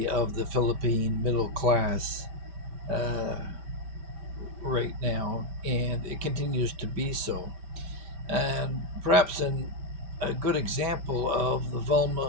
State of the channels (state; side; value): late; left; 5.1 ms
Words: of the Philippine middle class uh, right now, and it continues to be so. And perhaps a good example of the